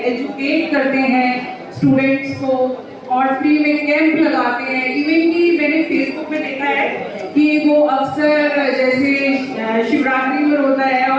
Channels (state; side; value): identical; both; correlation 1.00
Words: एजुकेट करते हैं स्टूडेंट्स को और फ्री में कैंप लगाते हैं। इवन कि मैंने फेसबुक पे देखा है कि वो अक्सर जैसे शिवरात्रि में होता है